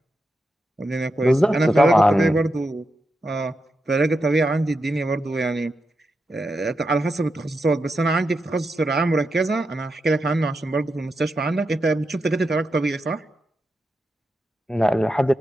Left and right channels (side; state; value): both; normal; correlation 0.87